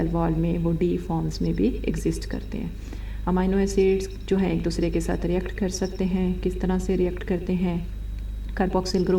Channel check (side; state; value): both; identical; correlation 1.00